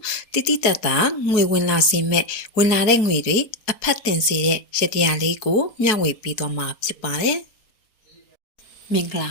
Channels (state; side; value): late; right; 4.2 ms